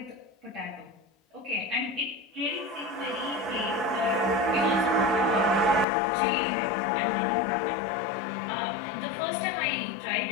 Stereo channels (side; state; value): right; drops out; at 5.9 s